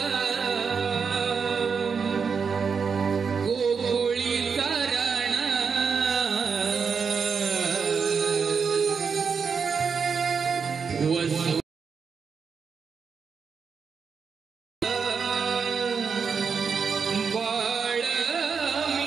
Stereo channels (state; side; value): quieter; left; 5.9 dB